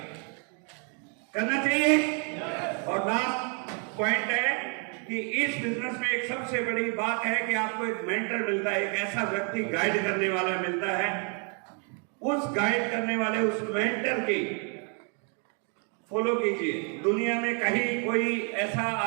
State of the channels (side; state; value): left; quieter; 38.4 dB